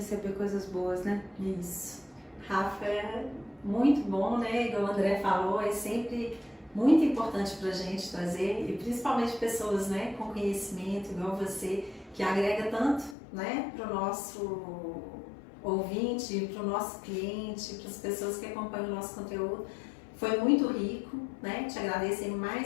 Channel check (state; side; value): drops out; right; at 13.2 s